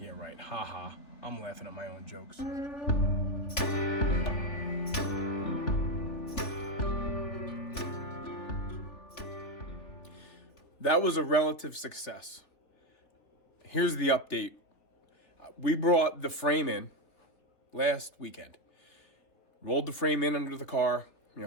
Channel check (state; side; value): late; right; 3.3 ms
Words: right, haha. I'm laughing at my own jokes. That was a relative success. Here's the update. We brought the frame in last weekend. Rolled the frame in under the car, you know,